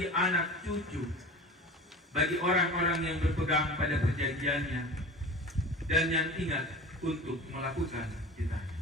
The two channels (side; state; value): both; normal; correlation 0.35